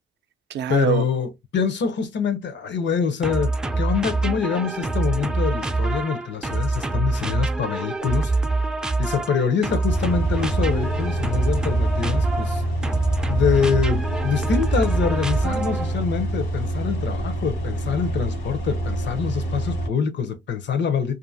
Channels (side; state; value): both; normal; correlation 0.64